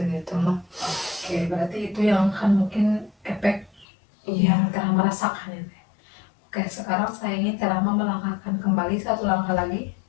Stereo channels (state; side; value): drops out; right; at 3.9 s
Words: mah. Oke, berarti itu yang kan mungkin efek Iya. yang Teh Rahma rasakan ya Teh. Oke, sekarang saya ingin Teh Rahma melangkahkan kembali satu langkah lagi.